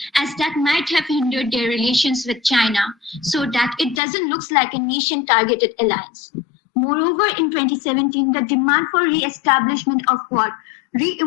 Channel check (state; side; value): drops out; right; at 4.0 s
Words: as that might have hindered their relations with China, so that it doesn't look like a nation-targeted alliance. Moreover, in 2017, the demand for re-establishment of Quad